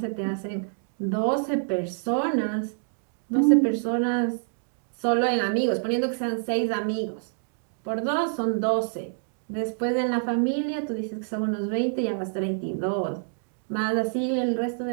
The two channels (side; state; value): left; silent; digital silence